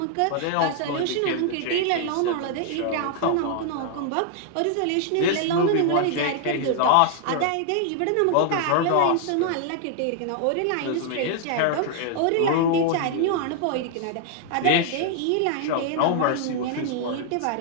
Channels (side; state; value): both; different; correlation 0.00